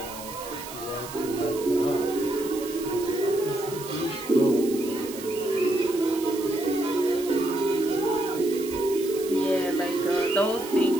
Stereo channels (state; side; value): noise; right; hiss, 13 dB below the sound